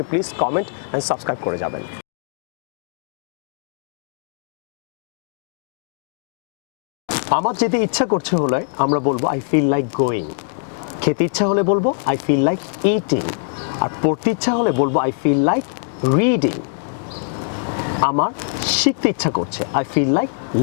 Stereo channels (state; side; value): silent; right; digital silence